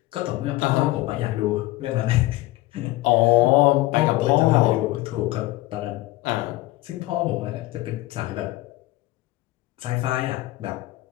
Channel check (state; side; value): quieter; right; 18.6 dB